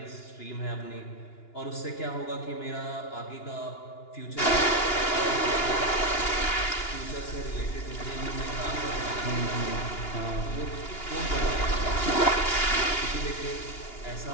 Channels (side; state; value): right; late; 2.9 ms